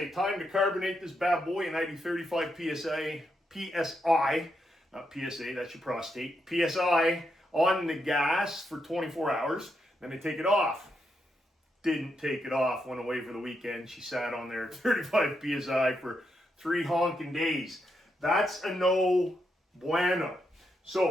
time to carbonate this bad boy, and I do 35 PSI, not PSA, that's your prostate, PSI on the gas for 24 hours. Then I take it off. Didn't take it off, went away for the weekend. She sat on there at 35 PSI for 3 honking days. That's a no bueno.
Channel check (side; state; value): both; normal; correlation 0.82